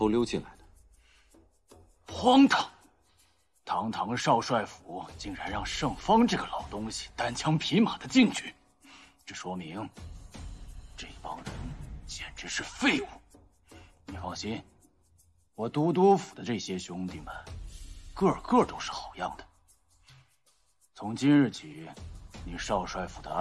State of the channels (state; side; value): identical; both; correlation 1.00